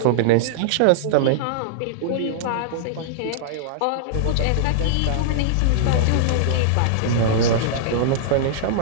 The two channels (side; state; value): both; different; correlation -0.01